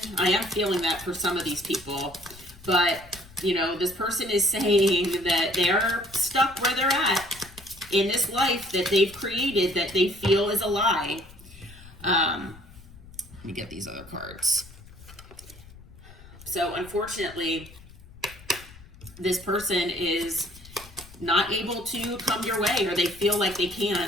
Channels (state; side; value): noise; left; rumble, 20 dB below the sound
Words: I am feeling that for some of these people, but, this person is saying that they're stuck where they're at in this life that they've created that they feel is a lie. Let me get these other cards. So unfortunately, this person is not able to come your way, or they feel like they